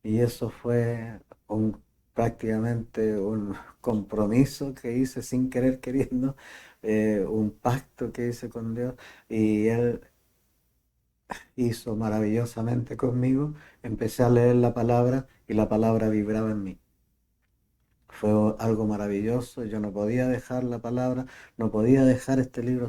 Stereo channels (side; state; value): both; identical; correlation 1.00